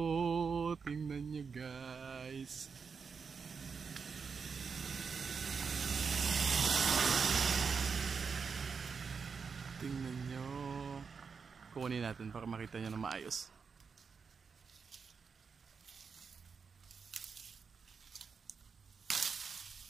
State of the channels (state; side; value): quieter; left; 5.6 dB